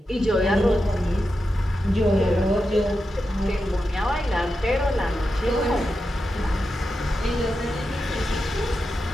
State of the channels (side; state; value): both; normal; correlation 0.89